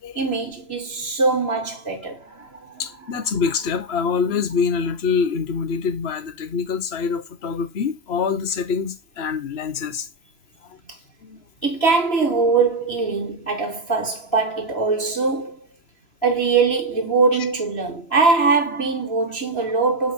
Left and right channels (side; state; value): right; late; 3.0 ms